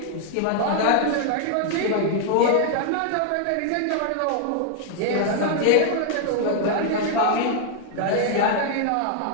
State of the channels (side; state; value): both; different; correlation 0.00